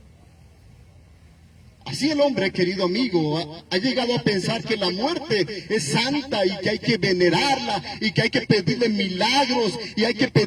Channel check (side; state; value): both; identical; correlation 1.00